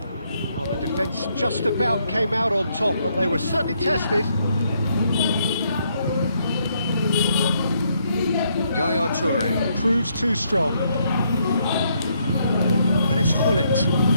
Well, the defence just about came out on top, but they were certainly tested. Yaya Toure proves too strong. And it's Hullet.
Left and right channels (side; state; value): both; inverted; correlation -0.73